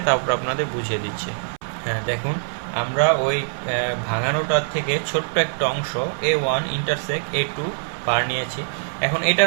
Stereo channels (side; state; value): left; silent; 63 dB below the other